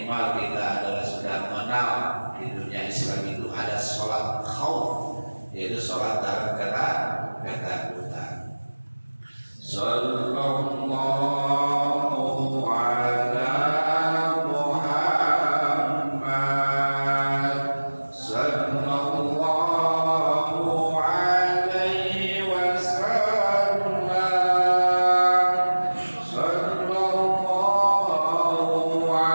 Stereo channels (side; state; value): both; inverted; correlation -1.00